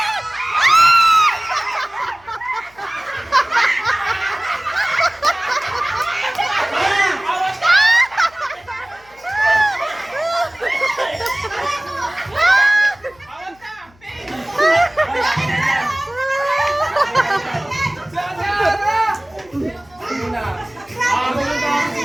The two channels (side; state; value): left; noise; hum, 29 dB below the sound